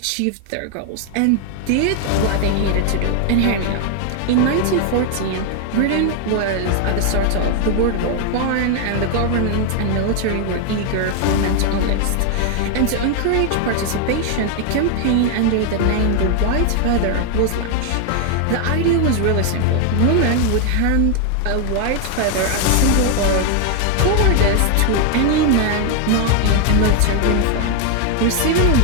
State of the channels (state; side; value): different; both; correlation 0.01